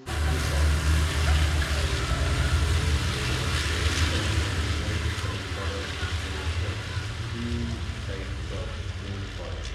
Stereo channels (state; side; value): identical; both; correlation 1.00